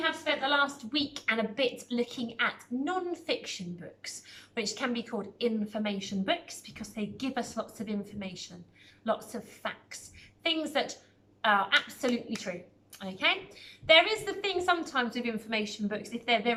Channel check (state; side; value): identical; both; correlation 1.00